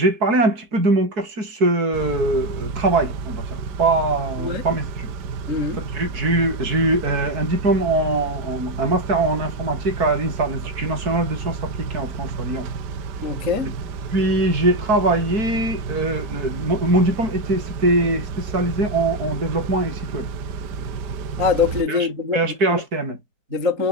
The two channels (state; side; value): late; left; 4.6 ms